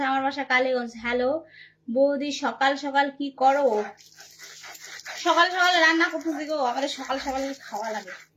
আমার বাসা কালীগঞ্জ। হ্যালো বৌদি, সকাল সকাল কি করো? সকাল সকাল রান্না করতেছি গো, আমাদের সকাল সকাল খাওয়া লাগে।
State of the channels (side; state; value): both; identical; correlation 1.00